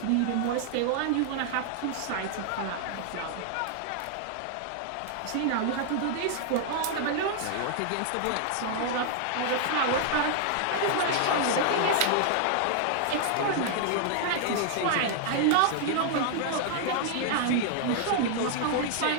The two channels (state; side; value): different; both; correlation 0.00